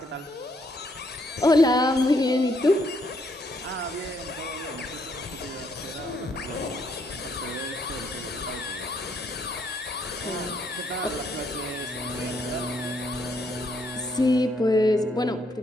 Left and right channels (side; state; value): both; normal; correlation 0.72